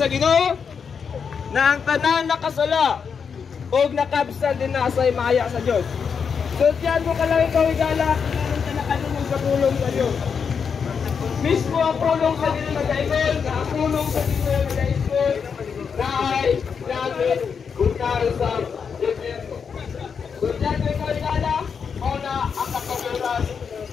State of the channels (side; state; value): right; quieter; 6.3 dB